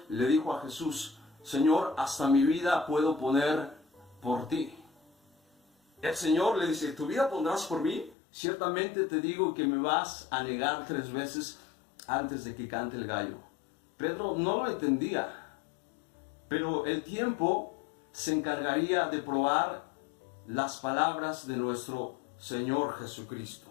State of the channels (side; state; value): right; drops out; at 8.2 s